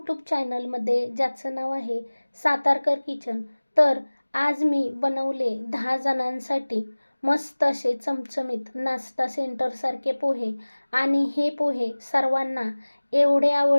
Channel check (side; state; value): both; inverted; correlation -1.00